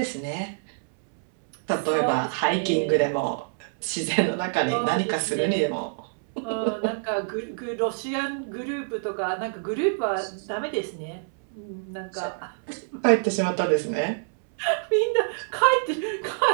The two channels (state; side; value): silent; left; 61 dB below the other